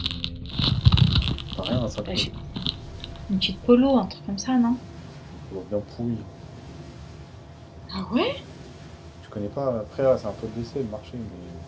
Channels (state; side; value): identical; both; correlation 1.00